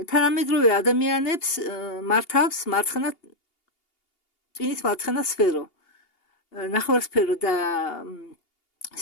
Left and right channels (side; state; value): right; late; 2.8 ms